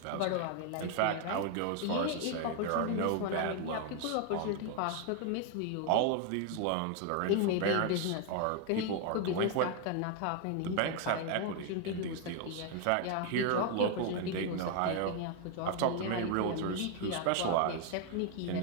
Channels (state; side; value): different; both; correlation 0.01